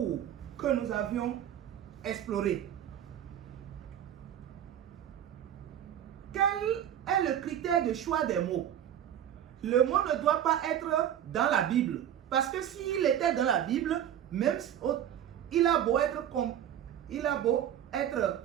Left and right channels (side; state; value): left; quieter; 10.3 dB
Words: que nous avions explorés. Quel est le critère de choix des mots? Le mot ne doit pas être dans la Bible. Parce que s'il était dans la Bible, même il a beau être